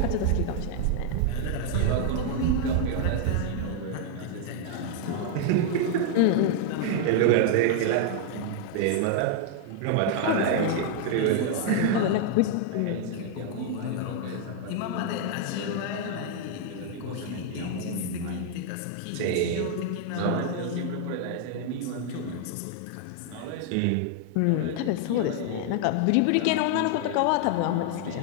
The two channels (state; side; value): different; both; correlation 0.00